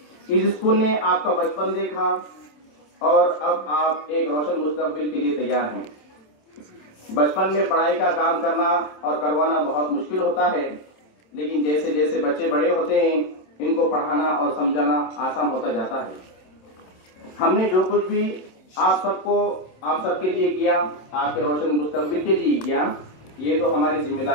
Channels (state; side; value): late; right; 27 ms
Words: इस स्कूल ने आपका बचपन देखा और अब आप एक रोशन मुस्तकबिल के लिए तैयार हैं। बचपन में पढ़ाई का काम करना और करवाना बहुत मुश्किल होता है, लेकिन जैसे जैसे बच्चे बड़े होते हैं इनको पढ़ाना और समझाना आसान होता जाता है। हमने जो कुछ भी आप सबके लिए किया, आपके रोशन मुस्तकबिल के लिए किया, ये तो हमारी